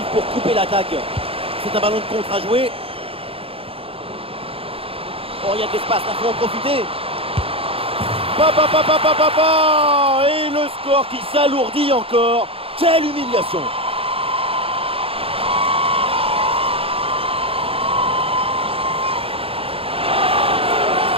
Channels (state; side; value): late; left; 0.27 ms